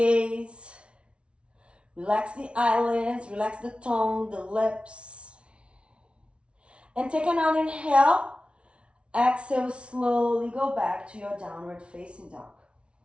Relax the eyelids. Relax the tongue, the lips. And take another inhale. Exhale, slowly go back to your downward facing dog.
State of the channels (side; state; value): left; late; 0.059 ms